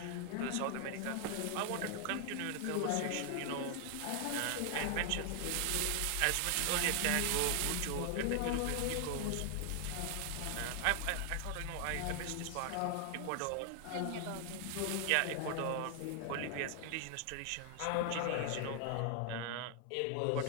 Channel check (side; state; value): both; different; correlation 0.00